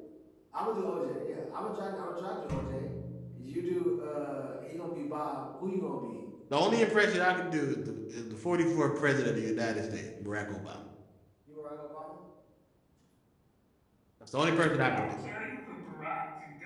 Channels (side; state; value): both; identical; correlation 1.00